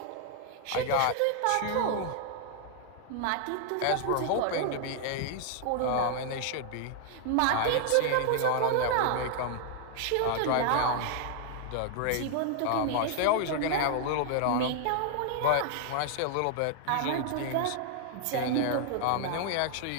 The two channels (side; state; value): both; different; correlation 0.00